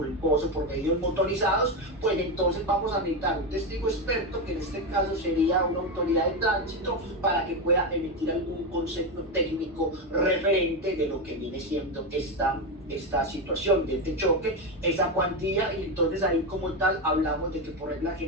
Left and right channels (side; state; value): both; normal; correlation 0.12